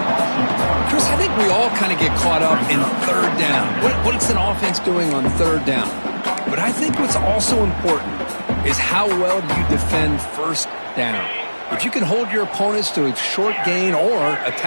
Chris, I think we all kind of get caught up in third down. What's an offense doing on third down? But I think what's also important is how well do you defend first down. If you can hold your opponents to a short gain or a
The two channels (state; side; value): inverted; both; correlation -1.00